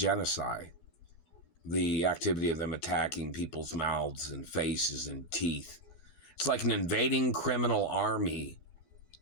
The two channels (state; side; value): late; right; 12 ms